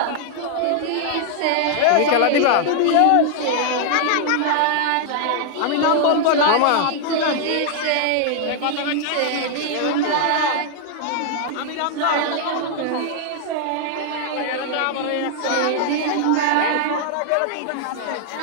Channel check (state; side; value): different; both; correlation 0.00